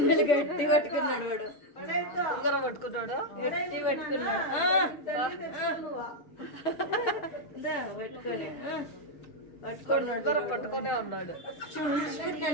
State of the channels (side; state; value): right; late; 6.4 ms